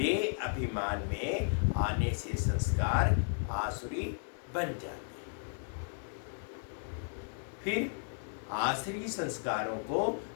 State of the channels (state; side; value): silent; right; digital silence